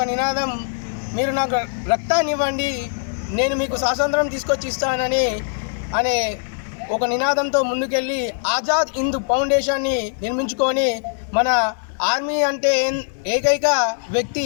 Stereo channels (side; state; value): right; silent; digital silence